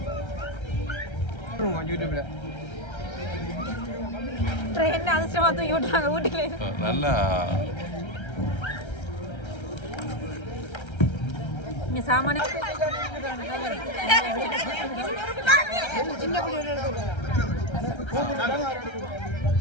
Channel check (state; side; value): late; right; 1.3 ms